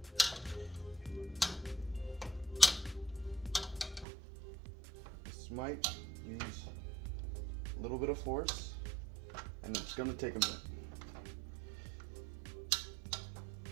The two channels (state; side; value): drops out; left; at 4.0 s